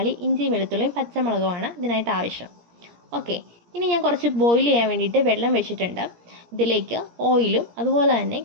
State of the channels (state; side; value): late; left; 17 ms